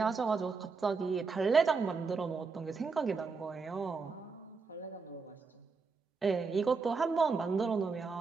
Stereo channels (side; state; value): left; quieter; 4.7 dB